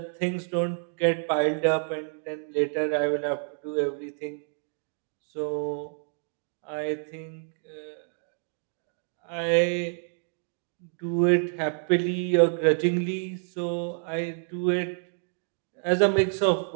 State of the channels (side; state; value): left; silent; 59 dB below the other